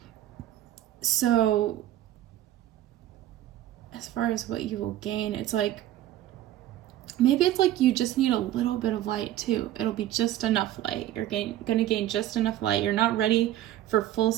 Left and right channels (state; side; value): quieter; left; 13.3 dB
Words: So as far as what you will gain, it's like, maybe it's like you just need a little bit of light too. It'll be just enough light. You're gonna gain just enough light. You're not ready for full